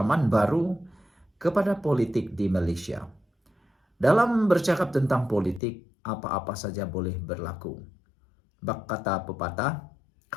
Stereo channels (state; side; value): drops out; right; at 5.6 s